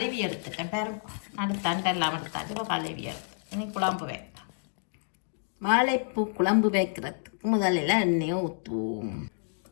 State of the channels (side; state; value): right; silent; digital silence